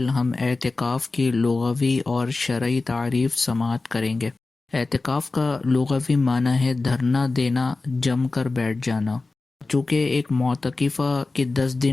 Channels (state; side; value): quieter; right; 3.6 dB